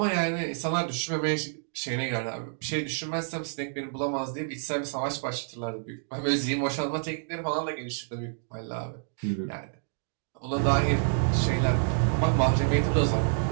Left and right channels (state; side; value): silent; left; digital silence